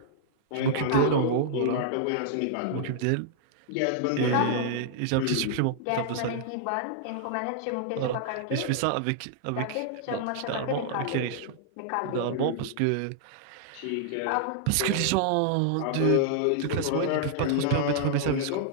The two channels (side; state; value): both; different; correlation -0.01